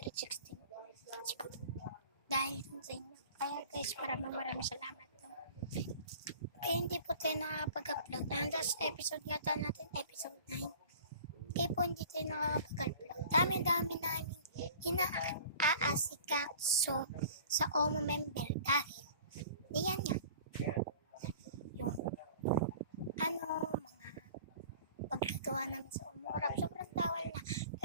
Dahil sa inyo. Kaya guys, maraming salamat. Hindi po tayo nakakapag-upload. And last episode yata natin, episode 9. Kaya po hindi tayo nakakapag-upload. Dami-dami namin inaasikaso sa OMO member dahil diyan nga yung mga pagkagawa namin sa OMO-Rap. Sobrang tawal na.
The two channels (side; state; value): both; inverted; correlation -0.45